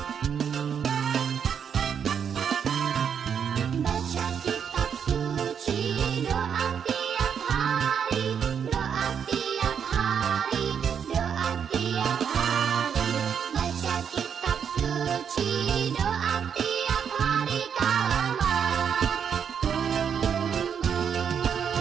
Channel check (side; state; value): left; quieter; 7.6 dB